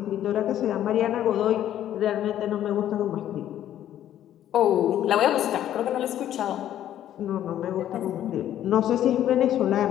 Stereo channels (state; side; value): quieter; right; 11.6 dB